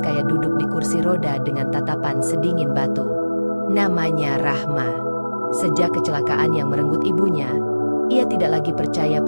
duduk di kursi roda dengan tatapan sedingin batu. Namanya Rahma. Sejak kecelakaan yang merenggut ibunya, ia tidak lagi percaya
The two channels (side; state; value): both; inverted; correlation -1.00